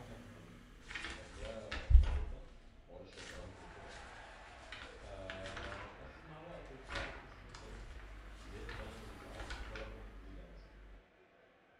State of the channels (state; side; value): identical; both; correlation 1.00